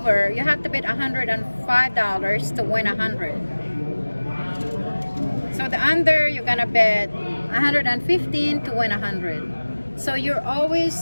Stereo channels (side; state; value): both; inverted; correlation -1.00